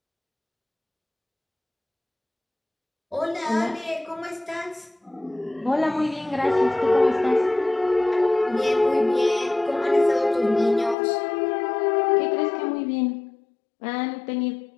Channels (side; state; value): right; drops out; at 11.0 s